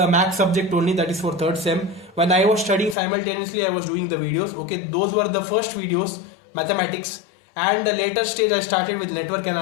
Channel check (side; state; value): right; drops out; at 3.0 s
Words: Max subject only, that is for 3rd sem. When I was studying simultaneously, I was doing the videos. Okay, those were the first videos, mathematics, and the later stage I started with network